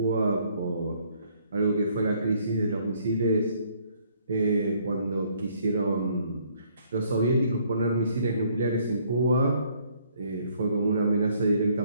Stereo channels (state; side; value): inverted; both; correlation -0.65